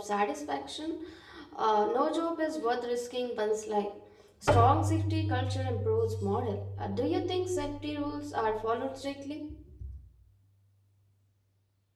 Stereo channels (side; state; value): both; identical; correlation 1.00